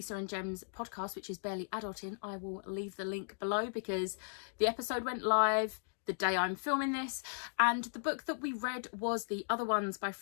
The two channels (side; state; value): right; silent; digital silence